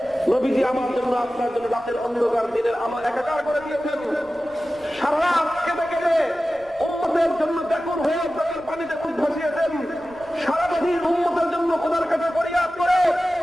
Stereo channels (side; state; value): left; noise; rumble, 26 dB below the sound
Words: নবীজি আমার জন্য আপনার জন্য রাতের অন্ধকার দিনের আমার একাকার করে দিয়েছেন। সারা রাত কেঁদে কেঁদে উম্মতের জন্য ব্যাকুল হয়ে চোখের পানিতে মুখ ভাসিয়েছেন। সারাদিন উম্মতের জন্য খোদার কাছে ফরিয়াদ করে